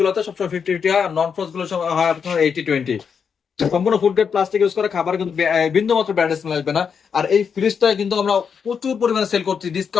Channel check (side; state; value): right; quieter; 6.6 dB